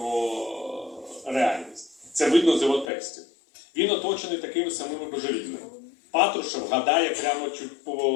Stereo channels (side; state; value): right; drops out; at 2.9 s